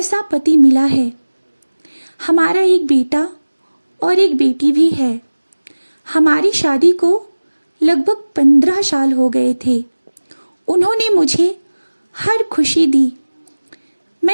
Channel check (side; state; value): both; inverted; correlation -1.00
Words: पति मिला है। हमारा एक बेटा और एक बेटी भी है। हमारी शादी को लगभग 15 साल हो गए थे। उन्होंने मुझे हर खुशी दी।